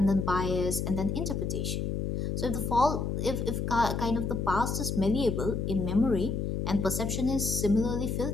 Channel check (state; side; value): noise; left; hum, 1 dB below the sound